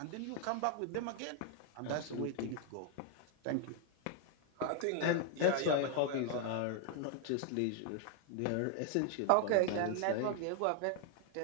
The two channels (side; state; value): both; different; correlation 0.00